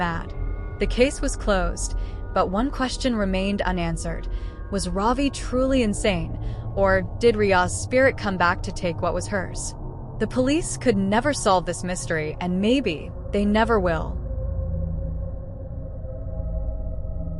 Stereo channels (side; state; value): both; identical; correlation 1.00